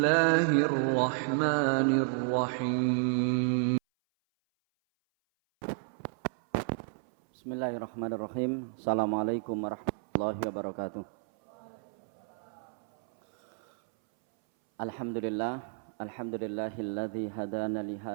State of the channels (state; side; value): silent; left; 57 dB below the other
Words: Bismillahirrahmanirrahim. Assalamualaikum warahmatullahi wabarakatuh. Alhamdulillahilladzi hadana li